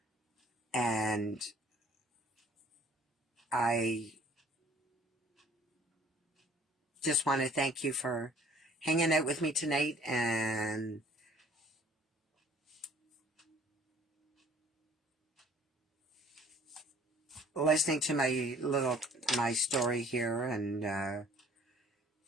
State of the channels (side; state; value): both; normal; correlation 0.55